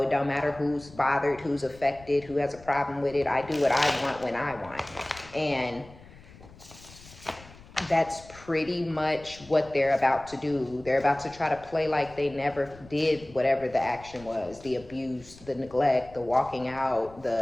it don't matter who's bothered, who's affected, who has a problem with it. I do what I want when I want. And that's pretty much what they're about to do. They're about to try to play like they never did whatever the action was. The abuse, the neglect, the walking out,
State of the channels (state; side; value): noise; left; rumble, 21 dB below the sound